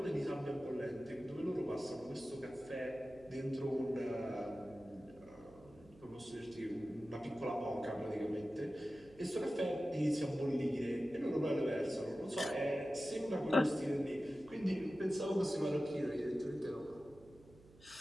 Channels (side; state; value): right; noise; hum, 23 dB below the sound